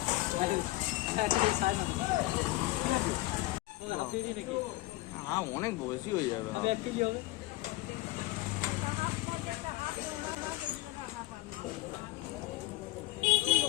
অনেক বেশি হয়ে যাবে।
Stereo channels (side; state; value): right; quieter; 18.6 dB